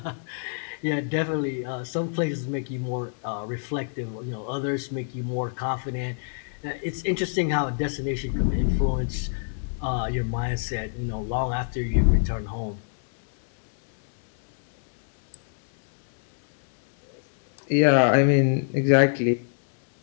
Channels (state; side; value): silent; right; digital silence